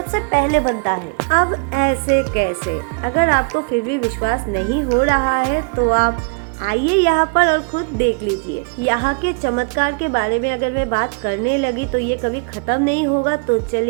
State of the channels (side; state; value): left; quieter; 34.9 dB